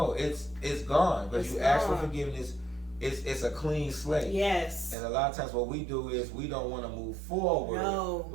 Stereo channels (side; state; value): left; drops out; at 5.0 s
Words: it's gone because you ask for forgiveness. It's a clean slate. Yes. And a lot of times what we do is we don't want to move forward